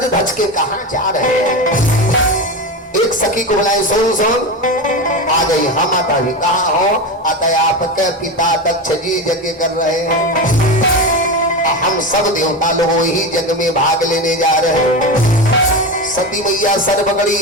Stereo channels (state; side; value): normal; both; correlation 0.20